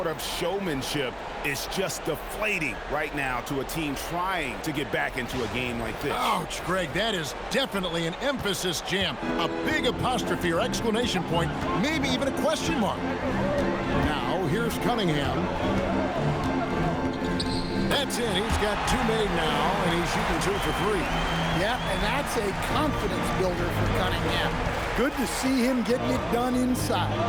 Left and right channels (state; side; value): identical; both; correlation 1.00